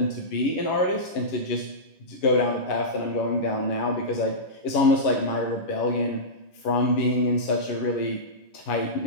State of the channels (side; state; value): right; late; 11 ms